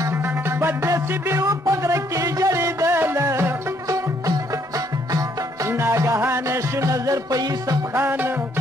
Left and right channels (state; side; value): normal; both; correlation 0.69